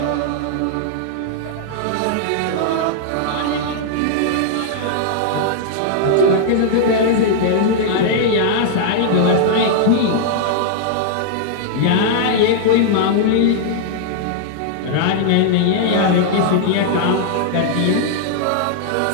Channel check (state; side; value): different; both; correlation -0.01